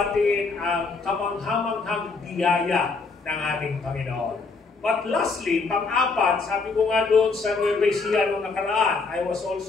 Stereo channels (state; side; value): quieter; right; 4.2 dB